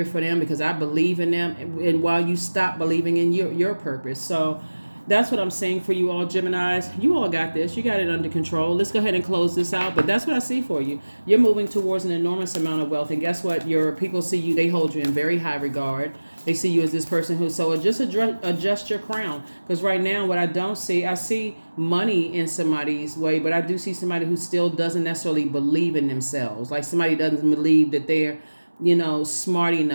for them because I believe in them, and while you stop believing in your purpose. So that's what I'm saying for you all, Geminis. You all got this. You got it under control. Let's go ahead and close this out. But that's what I see for you. You're moving towards an enormous amount of wealth, and guess what? Your people see you. They hold you in very high regard. They see you as this person who, so just adjust your crown. Because right now, what I don't see, I see money in somebody's way, but I do see somebody who still doesn't necessarily believe in themselves. Like somebody doesn't believe that they're, smart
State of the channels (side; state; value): both; inverted; correlation -1.00